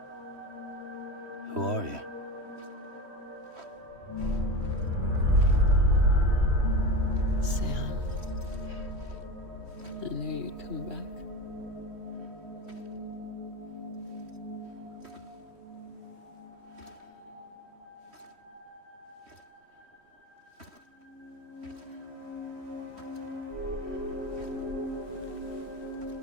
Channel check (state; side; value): late; left; 3.1 ms